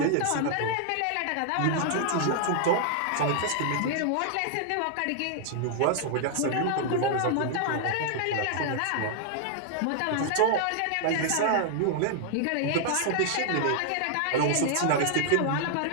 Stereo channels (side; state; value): both; different; correlation -0.01